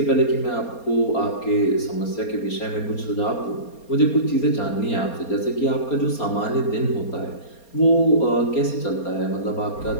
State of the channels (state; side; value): late; right; 4.3 ms